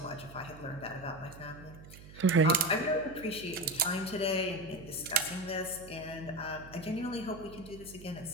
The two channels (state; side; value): noise; right; hum, 17 dB below the sound